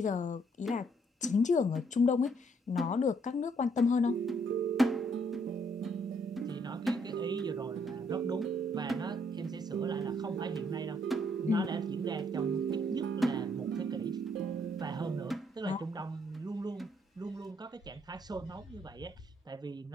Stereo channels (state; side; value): normal; both; correlation 0.69